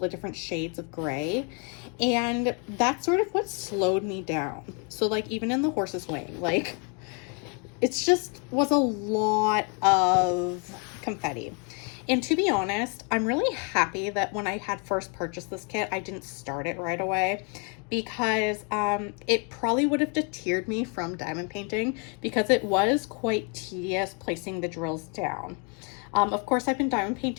different shades of gray. And that's sort of what slowed me down. So like even in the horse's wing, like it's just was a lot of confetti. And to be honest, I'm really happy that when I had first purchased this kit, I didn't start it right away, because it probably would have deterred me from diamond painting because it was quite tedious placing the drills down. Of course, I've been diamond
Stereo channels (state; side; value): quieter; right; 36.5 dB